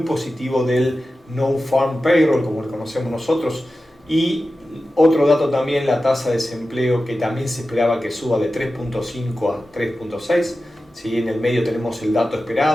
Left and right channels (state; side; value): normal; both; correlation 0.93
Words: del No-Farm Payroll, como lo conocemos nosotros, y otro dato también, la tasa de desempleo, que también se esperaba que suba de 3.5 a 3.6. ¿Sí? En el medio tenemos el dato